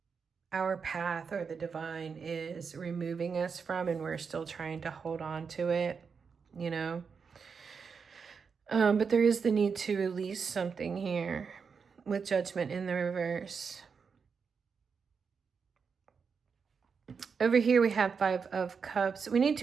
our path or the divine is removing us from, and we're still trying to hold on to it, you know. But there is the need to release something here with Judgment in the reverse. Over here we have Five of Cups. We need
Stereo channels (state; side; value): quieter; left; 5.8 dB